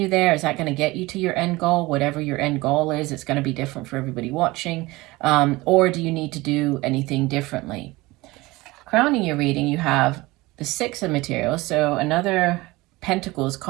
there. Is that going to get you to your end goal? Whatever your end goal is, it's going to be different for everybody watching. Or do you need to do anything differently? Crowning your reading, you have the Six of Materials, so another Pentacles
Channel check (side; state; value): left; quieter; 21.0 dB